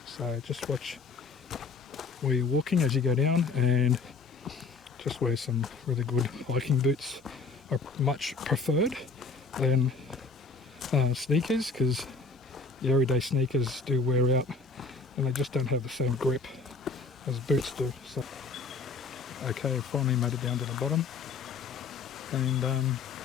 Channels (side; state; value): right; quieter; 4.4 dB